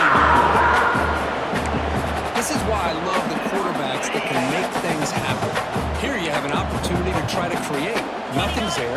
This is why I love the quarterbacks that can make things happen. Here you have an opportunity to try to create. Nothing's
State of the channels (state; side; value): identical; both; correlation 1.00